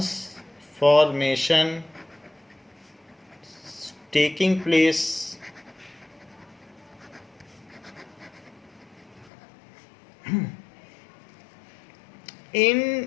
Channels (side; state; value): right; drops out; at 9.3 s